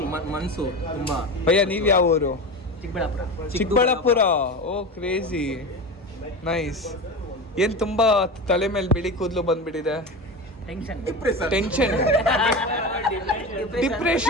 ಮನ್ಸು ತುಂಬಾ. ಭಯ್ಯ ನೀವು ಯಾವ ಊರು? Chikkaballapur. Chikkaballapur. Oh crazy, nice. ಏನ್ ತುಂಬಾ ತಲೆ ಮೇಲೆ ಬಿಳಿ ಕೂದಲು ಬಂದ್ಬಿಟ್ಟಿದೆ? ಟೆನ್ಷನ್.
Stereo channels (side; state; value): both; normal; correlation 0.25